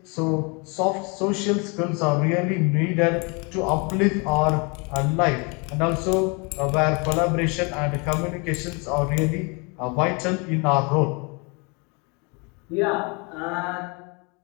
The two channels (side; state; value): right; quieter; 31.6 dB